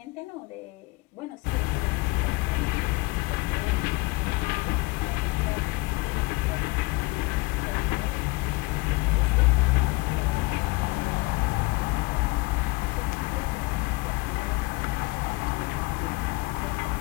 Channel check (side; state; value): right; quieter; 23.8 dB